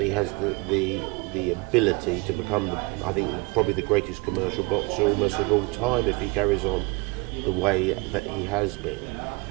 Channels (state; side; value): quieter; left; 25.4 dB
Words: he has the ability to become, I think, probably the greatest commercial boxer almost of all time if he carries on the way that he has